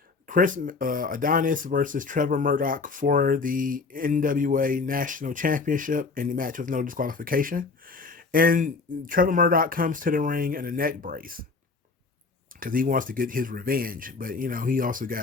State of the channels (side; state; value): right; quieter; 4.3 dB